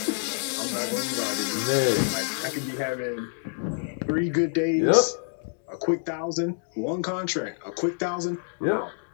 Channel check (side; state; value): right; silent; digital silence